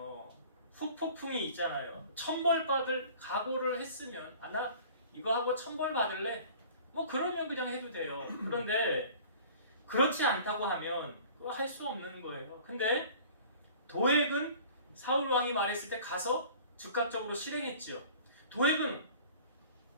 후폭풍이 있잖아요. 천벌 받을 각오를 했으면 나 이거 하고 천벌 받을래? 뭐 그러면 그냥 해도 돼요. 그런데 그렇지 않다고 하면 할 수 없는 거예요. 근데 도액은 사울 왕이 말했을 때 가서 즉각적으로 실행했지요. 도액은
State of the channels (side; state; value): both; inverted; correlation -0.47